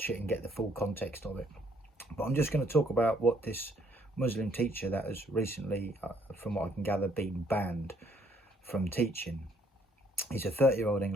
it and get the full context of it. But I'm just going to talk about what this Muslim teacher that has recently, from what I can gather, been banned from teaching. He's a 30-year-old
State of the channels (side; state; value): both; normal; correlation 0.66